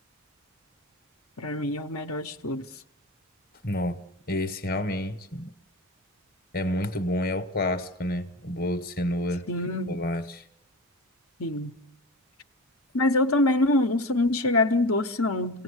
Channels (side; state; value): both; normal; correlation 0.29